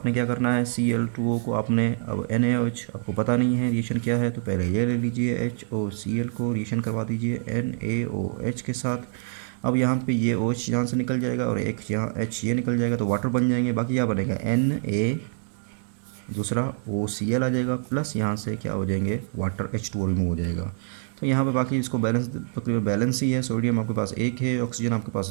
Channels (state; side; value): silent; left; digital silence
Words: क्या करना है, Cl2O को आपने, अब NaOH आपको पता नहीं है रिएक्शन क्या है, तो पहले ये ले लीजिए HOCl को रिएक्शन करवा दीजिए NaOH के साथ। अब यहाँ पे ये OH यहाँ से निकल जाएगा और एक यहाँ H ये निकल जाएगा, तो वाटर बन जाएंगे। बाकी क्या बनेगा, Na, दूसरा OCl आ जाएगा, प्लस यहाँ से क्या हो जाएंगे, वाटर H2O रिमूव हो जाएगा। तो यहाँ पे बाकी इसको बैलेंस, तकरीबन बैलेंस ही है। सोडियम आपके पास 1 है, ऑक्सीजन आपके